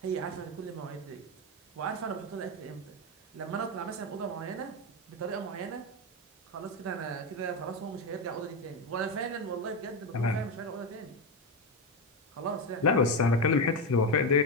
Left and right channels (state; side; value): normal; both; correlation 0.12